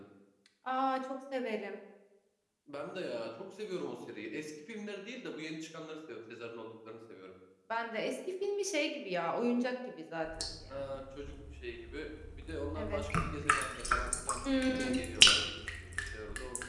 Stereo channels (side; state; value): both; identical; correlation 1.00